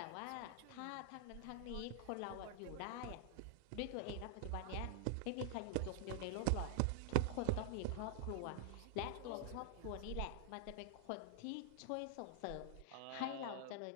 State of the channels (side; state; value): both; different; correlation 0.00